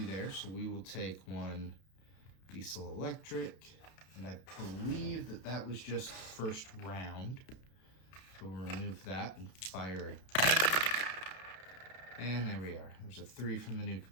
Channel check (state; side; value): late; right; 32 ms